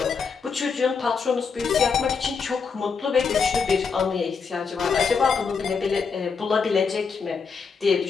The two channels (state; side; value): quieter; right; 5.5 dB